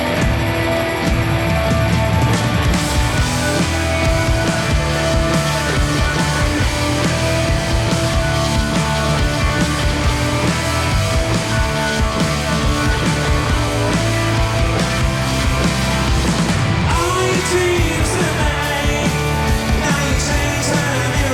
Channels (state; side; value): identical; both; correlation 1.00